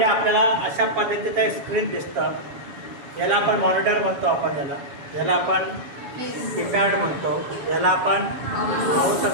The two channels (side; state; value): left; late; 7.1 ms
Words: आपल्याला अशा पद्धतीचं एक स्क्रीन दिसतं. याला आपण मॉनिटर म्हणतो, याला आपण कीपॅड म्हणतो, याला आपण माऊस